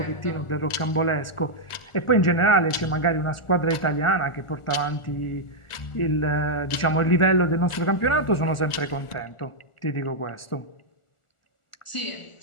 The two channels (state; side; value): late; right; 1.4 ms